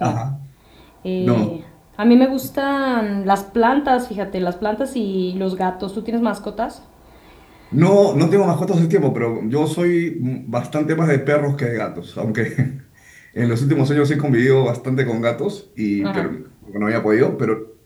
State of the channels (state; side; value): identical; both; correlation 1.00